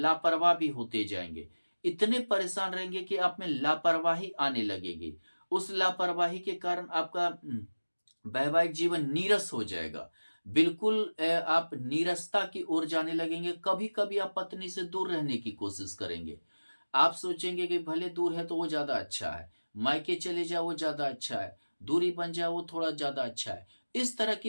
भी होते जाएंगे, इतने परेशान रहेंगे कि आप में लापरवाही आने लगेगी। उस लापरवाही के कारण आपका वैवाहिक जीवन नीरस हो जाएगा, बिल्कुल आप नीरसता की ओर जाने लगेंगे। कभी कभी आप पत्नी से दूर रहने की कोशिश करेंगे, आप सोचेंगे कि भले दूर है तो वो ज्यादा अच्छा है, मायके चले जाओ वो ज्यादा अच्छा है, दूरी बन जाए वो थोड़ा ज्यादा अच्छा है, इस तरह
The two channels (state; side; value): inverted; both; correlation -1.00